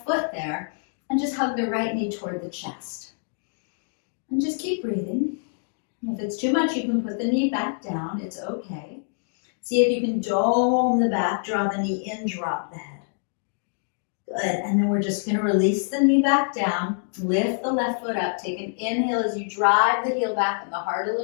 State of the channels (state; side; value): silent; right; digital silence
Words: foot there, and just hug the right knee toward the chest. And just keep breathing. If it's too much, you can put the knee back down, it's okay. See if you can dome the back, draw the knee in, drop the head. Good, and then we're just gonna release the knee back down, lift the left foot up, take an inhale as you drive the heel back and the heart a